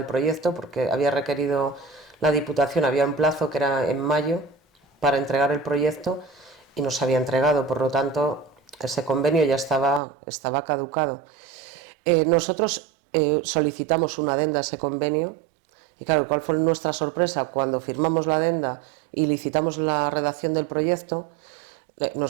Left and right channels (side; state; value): left; drops out; at 10.0 s